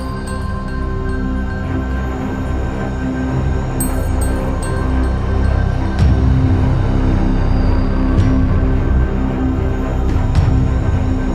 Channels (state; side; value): identical; both; correlation 1.00